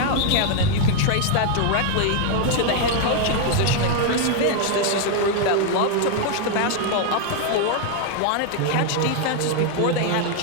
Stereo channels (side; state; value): both; different; correlation 0.01